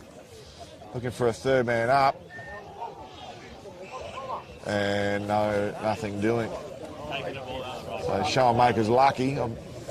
Looking for a third man up. And nothing doing. So Showmaker's lucky.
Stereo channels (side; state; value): both; identical; correlation 1.00